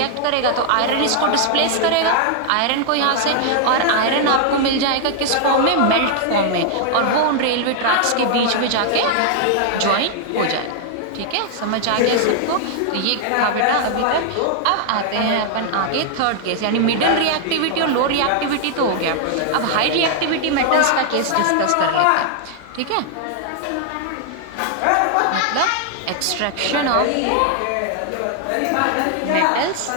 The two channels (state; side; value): different; both; correlation 0.00